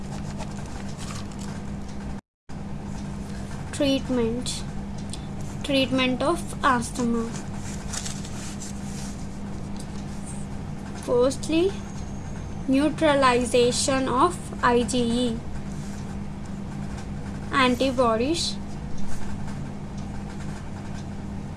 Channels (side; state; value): both; identical; correlation 1.00